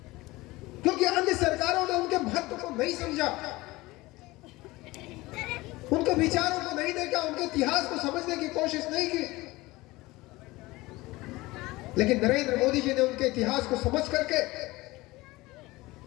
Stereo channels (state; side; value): quieter; right; 20.4 dB